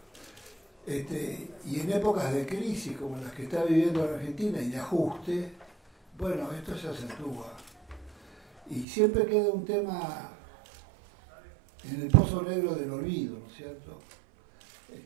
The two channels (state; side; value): drops out; left; at 8.8 s